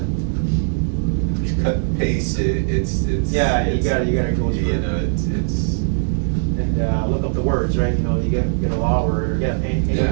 You cut and paste it. It's Yeah, you gotta go through You it. know, it's. And look up the words, right? You know, you get a law word or get any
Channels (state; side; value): silent; left; digital silence